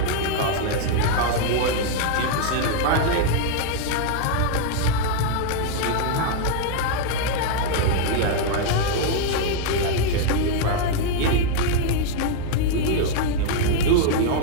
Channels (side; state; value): both; different; correlation 0.00